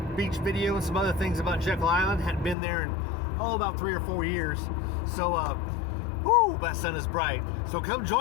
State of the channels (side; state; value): right; drops out; at 2.6 s